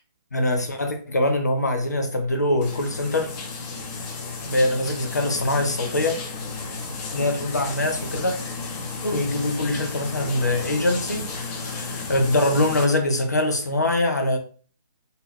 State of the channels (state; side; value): inverted; both; correlation -0.57